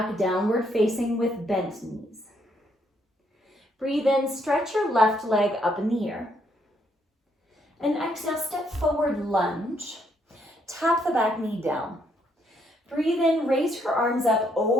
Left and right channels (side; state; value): both; normal; correlation 0.72